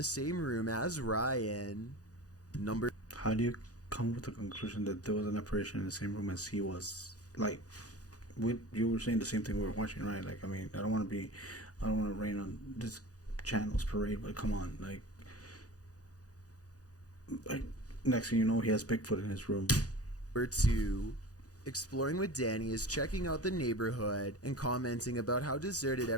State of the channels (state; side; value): late; right; 0.67 ms